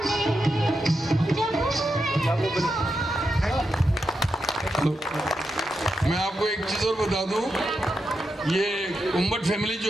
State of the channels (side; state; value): both; normal; correlation 0.86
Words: मैं आपको एक चीज़ और बता दूं, ये उम्मट फैमिली